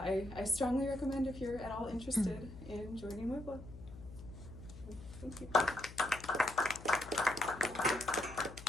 strongly recommend if you're at all interested in joining WiVLA. Thank you. Thank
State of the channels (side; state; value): left; noise; hum, 15 dB below the sound